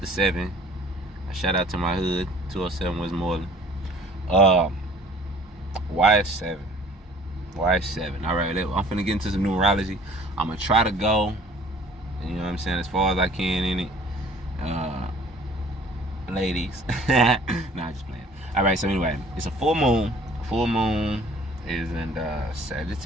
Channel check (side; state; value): both; normal; correlation 0.52